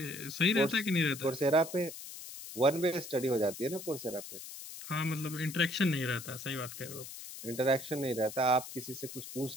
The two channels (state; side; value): noise; left; hiss, 11 dB below the sound